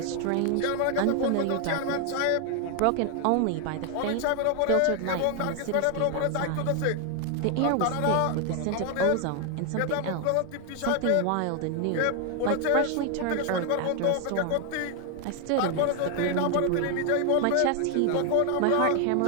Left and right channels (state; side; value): different; both; correlation 0.00